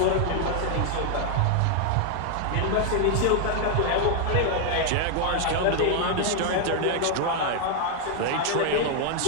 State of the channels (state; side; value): different; both; correlation 0.00